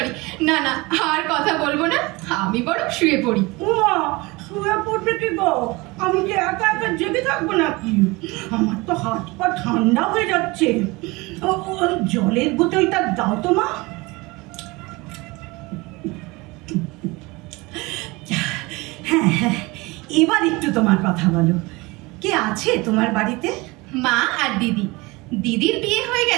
না না, আর কথা বলবো না, আমি বরং শুয়ে পড়ি। উমা, শুয়ে পড়বে কি গো? আমি কি একা একা জেগে থাকবো নাকি? আমার তো হাত পা ঠান্ডা হয়ে যাচ্ছে। জলের বোতলটা দাও তো মা। হ্যাঁ হ্যাঁ, এবার একটু তোমার কথা বলো। কে আছে তোমার বাড়িতে? মা আর দিদি। দিদির বিয়ে হয়ে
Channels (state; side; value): quieter; left; 23.7 dB